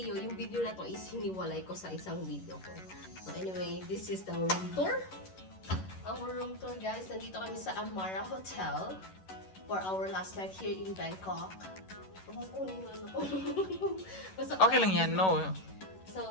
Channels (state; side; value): late; right; 11 ms